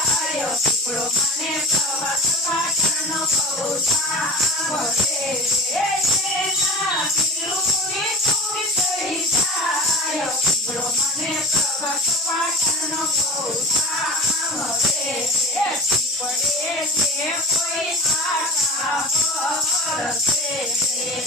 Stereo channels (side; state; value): both; normal; correlation 0.34